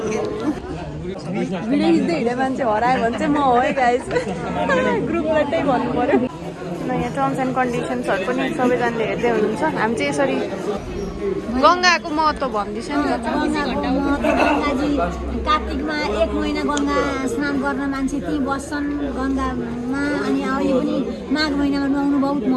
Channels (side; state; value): both; identical; correlation 1.00